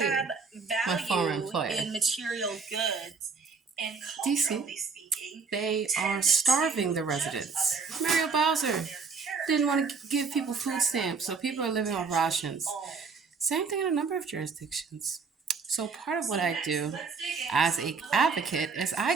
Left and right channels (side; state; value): left; quieter; 4.9 dB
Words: my former value employer. in material goods, and DC, culturally speaking, they are tend starving to the judge residents. others Mario on Bowser their didn't want to character give people rather food than stamps, so what people they are living off actually rations. own. Same thing in a number of jurisdictions. So part of So what I next, do let's dig into as some an little advocate is factors